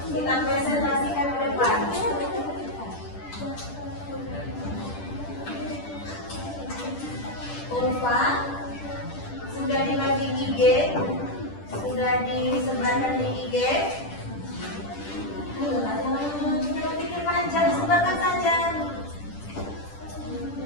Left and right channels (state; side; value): late; right; 10 ms